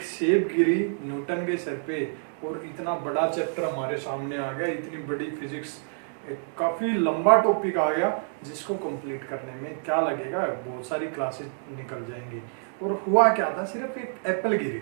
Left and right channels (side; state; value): left; silent; digital silence